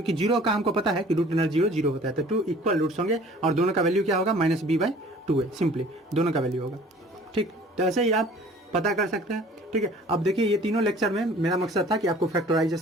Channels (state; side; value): normal; both; correlation 0.50